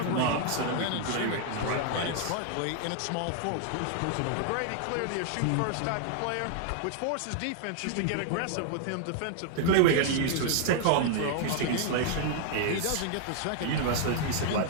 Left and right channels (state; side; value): different; both; correlation 0.00